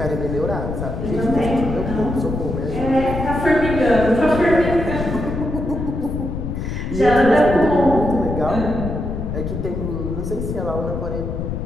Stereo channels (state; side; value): noise; left; rumble, 4 dB below the sound